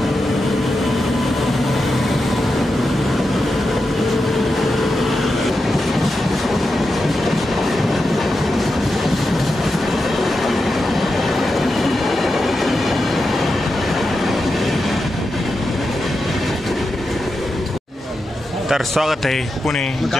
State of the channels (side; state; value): both; normal; correlation 0.89